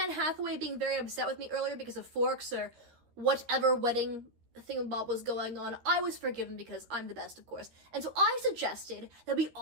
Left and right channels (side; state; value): left; late; 13 ms